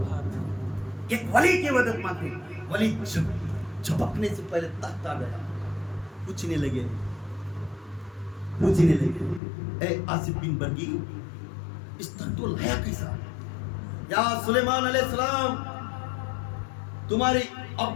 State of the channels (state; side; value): drops out; right; at 9.4 s